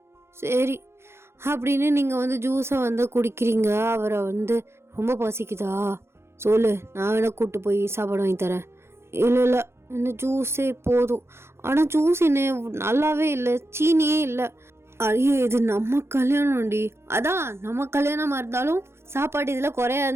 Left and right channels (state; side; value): late; left; 0.12 ms